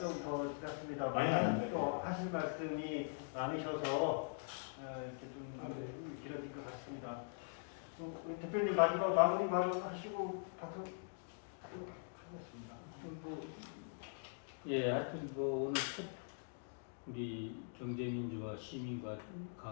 더 지났습니다. 또 하실 말씀이 많으셔서 이렇게 좀 길어진 것 같습니다. 우리 대표님 마지막 마무리 말하시고 하겠습니다. 하여튼 오늘 첫 우리 경제민주화 시민과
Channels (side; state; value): right; silent; digital silence